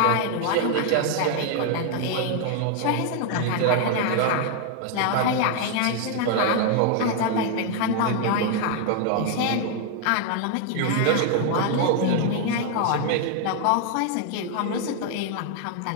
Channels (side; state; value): both; different; correlation 0.00